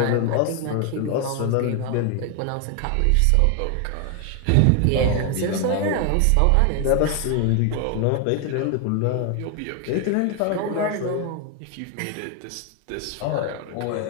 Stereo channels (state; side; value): different; both; correlation 0.01